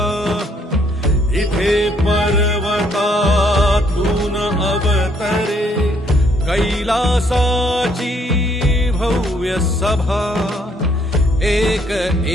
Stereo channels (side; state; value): both; normal; correlation 0.67